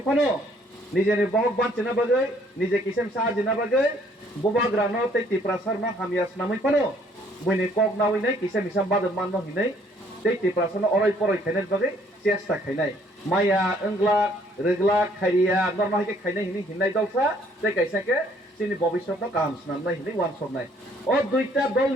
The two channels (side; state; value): both; normal; correlation 0.63